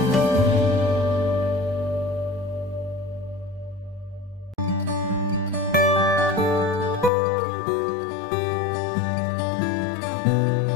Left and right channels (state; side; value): drops out; right; at 7.1 s